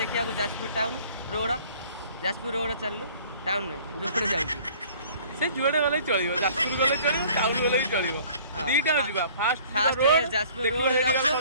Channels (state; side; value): inverted; both; correlation -0.52